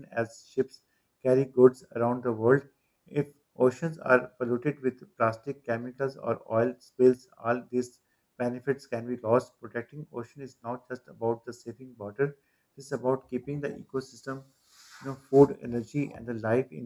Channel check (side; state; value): both; identical; correlation 1.00